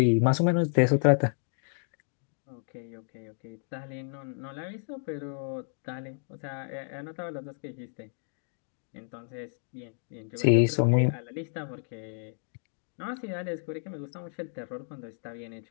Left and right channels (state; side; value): silent; right; digital silence